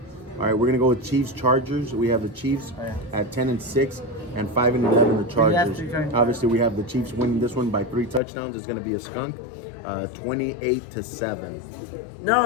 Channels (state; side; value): drops out; right; at 8.2 s